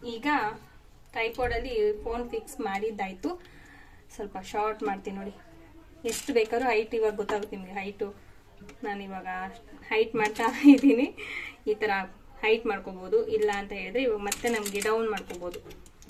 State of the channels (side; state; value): both; identical; correlation 1.00